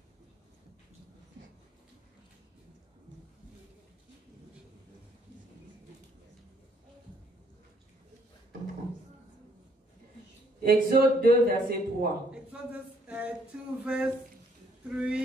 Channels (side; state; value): both; normal; correlation 0.67